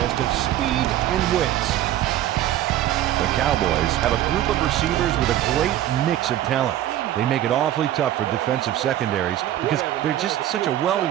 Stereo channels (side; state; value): left; quieter; 12.8 dB